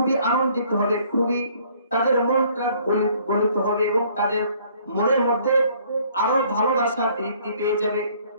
আনন্দিত হবে, খুবই তাদের মনটা গলিত হবে এবং তাদের মনের মধ্যে আরো ভালোবাসা বৃদ্ধি পেয়ে যাবে।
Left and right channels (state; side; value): inverted; both; correlation -0.60